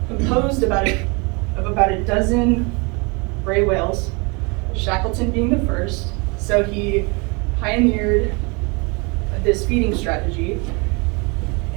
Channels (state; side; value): quieter; left; 30.0 dB